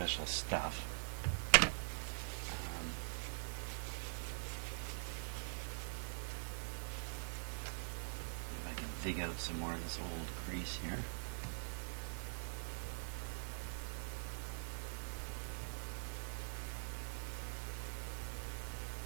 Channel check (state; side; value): silent; left; digital silence